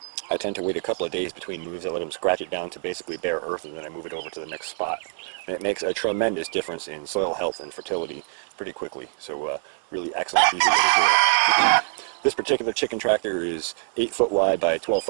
I tend to wait a couple of days between moves. I let them scratch it down to basically bare earth, and then I move it over to the next spot. And it makes a tremendous difference in soil health and fertility pretty quickly. So really excellent, easy way to do it. This particular chicken tractor is 8 foot wide by 12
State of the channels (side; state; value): left; silent; digital silence